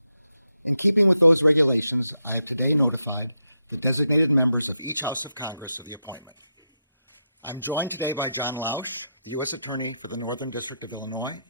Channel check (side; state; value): both; inverted; correlation -0.85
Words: In keeping with those regulations, I have today notified the designated members of each House of Congress of the appointment. I'm joined today by John Lausch, the U.S. Attorney for the Northern District of Illinois,